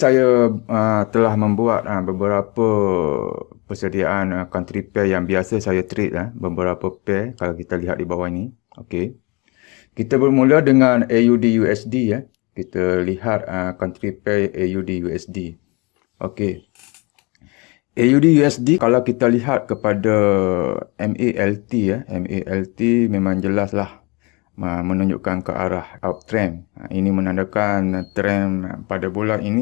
telah membuat beberapa persediaan country pair yang biasa saya trade beberapa pair kalau kita lihat di bawah ini. Okey. Kita bermula dengan AUD USD ya. Kita lihat country pair AUD USD. Okey. AUD USD kalau kita lihat kepada MALT ya, MALT memang jelaslah menunjukkan ke arah uptrend. Ini menandakan trend pada bulan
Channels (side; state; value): right; quieter; 27.8 dB